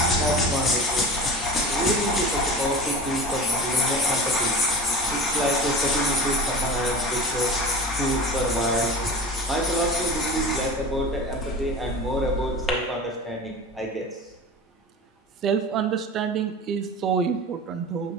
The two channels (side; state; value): both; normal; correlation 0.34